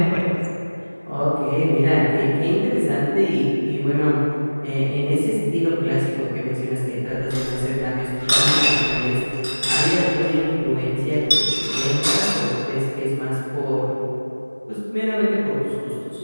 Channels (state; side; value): inverted; both; correlation -1.00